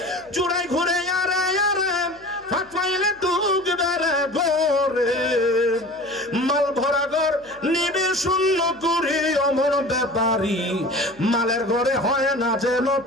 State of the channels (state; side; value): noise; left; hum, 29 dB below the sound